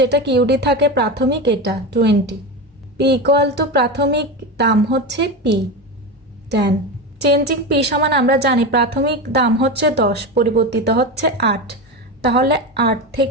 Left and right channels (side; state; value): both; normal; correlation 0.20